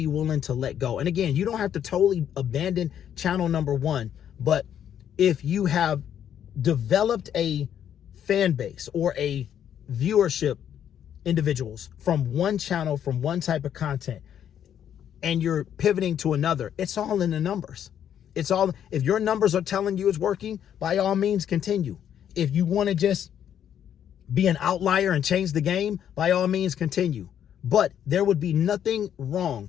willing to let go. And again, you don't have to totally abandon channel #1, but if you have developed a fan base or a viewership individuals from one channel, from one type of content, and you're pivoting to another, it's all in the numbers. It's all, if your numbers are telling you it's working, by all means continue. If you want to just be an outlier and change the game, by all means continue. But there would be nothing wrong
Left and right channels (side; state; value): right; quieter; 9.6 dB